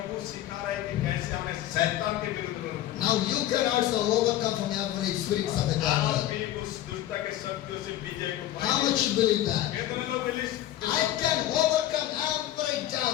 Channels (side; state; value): right; quieter; 13.2 dB